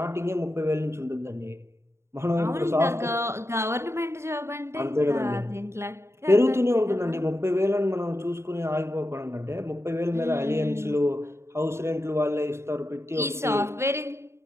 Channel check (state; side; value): late; left; 0.13 ms